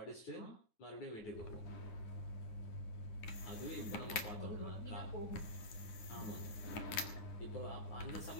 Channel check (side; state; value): right; late; 9.8 ms